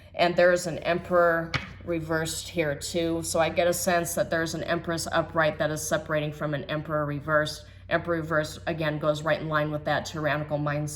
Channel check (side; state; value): both; identical; correlation 1.00